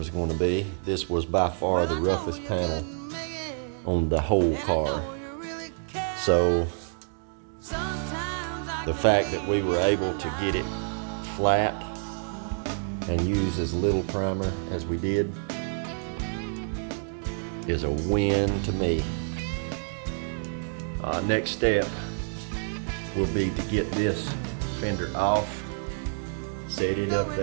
going to be. This was by far the roughest panel on the whole car. So the fact that we were able to get it flat and use as little primer as we did is a win to me. Next step will be to get this fender off, set it up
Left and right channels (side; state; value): left; silent; digital silence